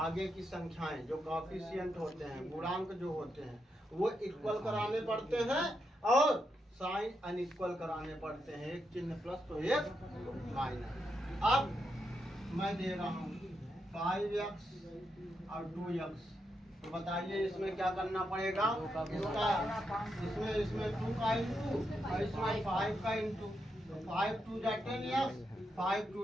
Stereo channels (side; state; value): both; normal; correlation 0.83